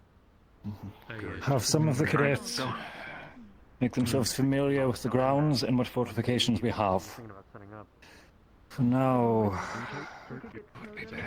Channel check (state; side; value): identical; both; correlation 1.00